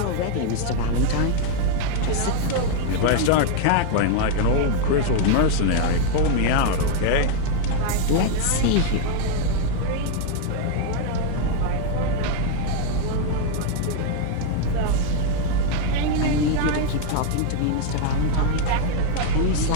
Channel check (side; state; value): both; different; correlation 0.00